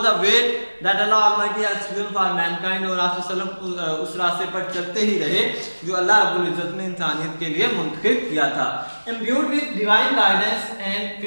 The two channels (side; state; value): both; inverted; correlation -1.00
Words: the way that Allah Almighty has chosen for mankind, और आप सल्लल्लाहु उस रास्ते पर चलते ही रहे जो अल्लाह रब्बुल इज्जत ने इंसानियत के लिए मुंतखब किया था। Imbued with divine guidance and